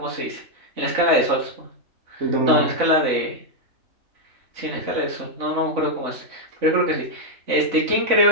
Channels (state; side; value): late; left; 3.5 ms